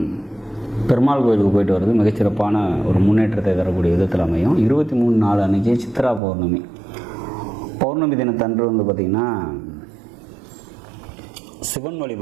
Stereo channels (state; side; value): drops out; left; at 6.2 s